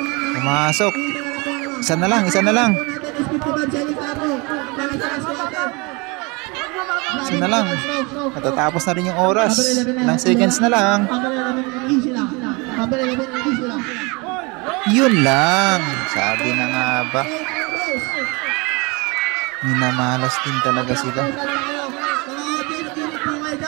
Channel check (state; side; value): quieter; left; 27.8 dB